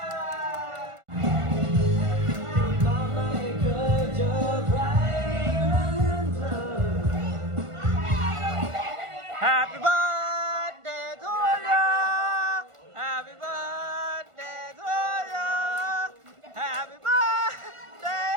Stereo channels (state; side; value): late; left; 1.5 ms